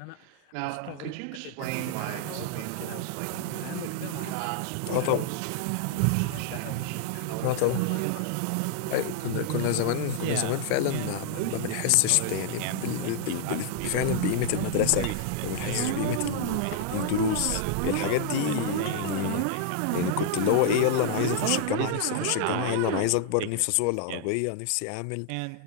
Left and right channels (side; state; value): both; different; correlation 0.00